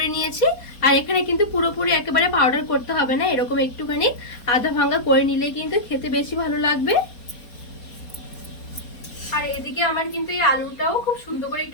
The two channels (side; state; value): right; late; 4.2 ms